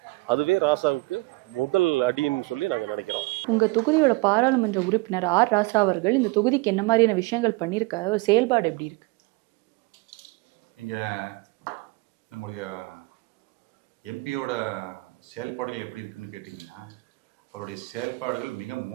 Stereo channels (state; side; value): quieter; left; 24.5 dB